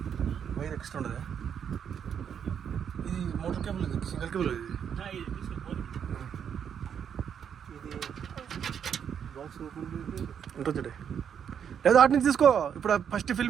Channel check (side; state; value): left; quieter; 8.1 dB